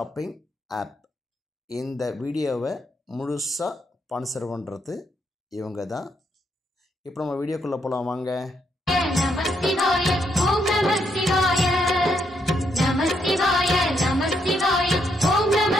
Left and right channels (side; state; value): both; normal; correlation 0.77